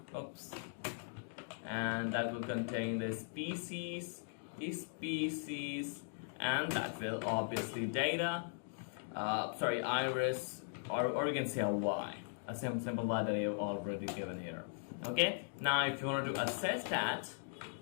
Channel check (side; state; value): right; silent; digital silence